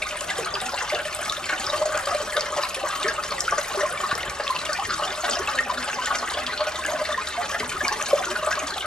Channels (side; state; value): both; normal; correlation 0.75